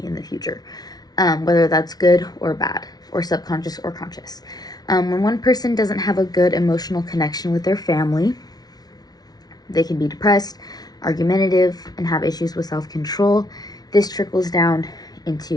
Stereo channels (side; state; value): right; late; 0.19 ms